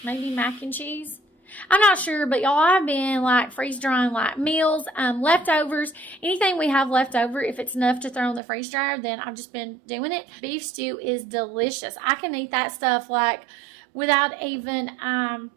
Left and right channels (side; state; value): left; drops out; at 8.4 s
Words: Maybe mac and cheese. I'm not sure, but y'all, I've been like freeze-drying like meals, leftovers. Anything we have left over, if it's enough to throw in the freeze dryer, then I've just been doing it. Beef stew is delicious. I can eat that stuff like without even